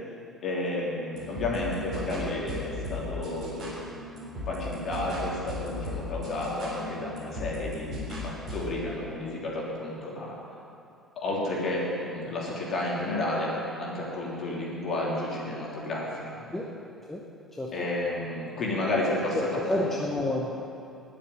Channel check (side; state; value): both; normal; correlation 0.37